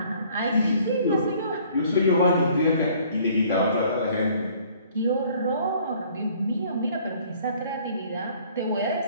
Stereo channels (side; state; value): both; inverted; correlation -0.57